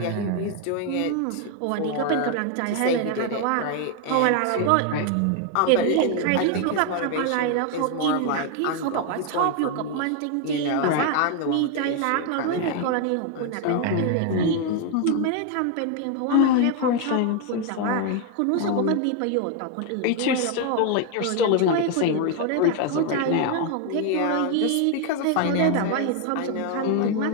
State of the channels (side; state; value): both; different; correlation 0.00